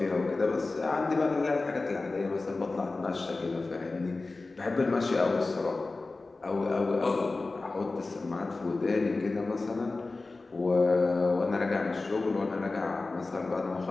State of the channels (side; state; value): right; quieter; 3.5 dB